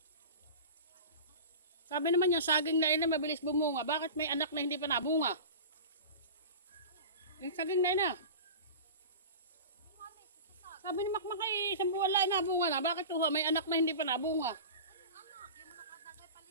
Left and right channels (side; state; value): both; inverted; correlation -0.33